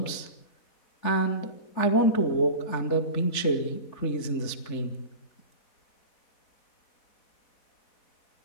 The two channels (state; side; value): late; right; 3.5 ms